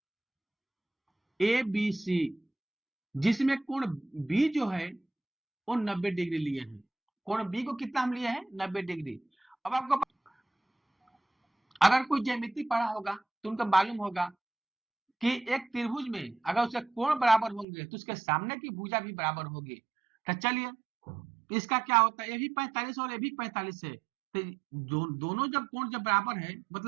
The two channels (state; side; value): drops out; left; at 17.7 s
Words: ए बी सी, जिसमें कोण बी जो है वो 90 डिग्री लिए हैं। कोण बी को कितना हम लिए हैं? 90 डिग्री। अब आपको अगर कोई ज्यामिति पढ़ा होगा तो उनको मालूम होगा कि एक त्रिभुज में अगर उसके कोण बराबर होंगे तो उसके सामने की भुजा भी बराबर होगी। तो चलिए इसका क्या होता है, ये भी 45 और ये भी 45 है। तो दोनों जब कोण जब बराबर है,